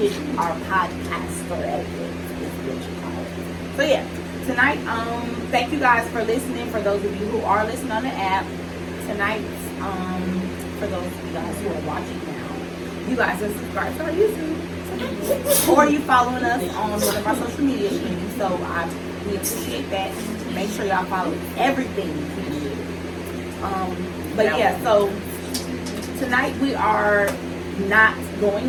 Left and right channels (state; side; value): identical; both; correlation 1.00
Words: Our podcaster etiquette is what you call it. So yeah, tonight, thank you guys for listening. For those of you who are listening on the app, tonight, for those of you guys who are watching now, you guys are subscribed to our YouTube, or you following us on one of our social media streams. So we appreciate that. Make sure y'all follow everything we do. But yeah, so tonight we are not